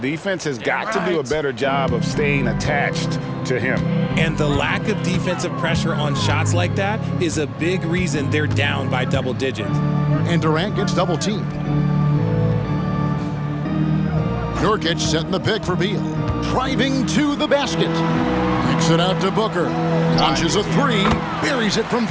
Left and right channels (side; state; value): both; identical; correlation 1.00